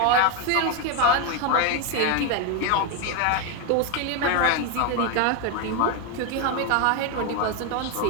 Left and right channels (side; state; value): both; different; correlation 0.02